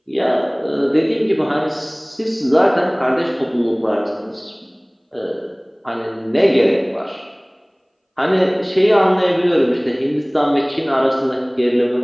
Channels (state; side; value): identical; both; correlation 1.00